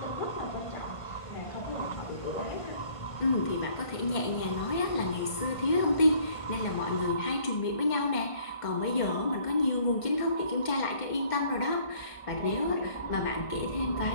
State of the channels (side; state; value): right; late; 1.5 ms